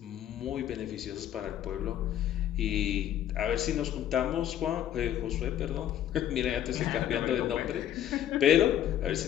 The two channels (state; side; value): quieter; right; 11.0 dB